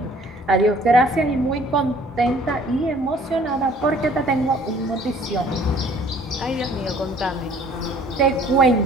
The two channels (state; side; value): normal; both; correlation 0.55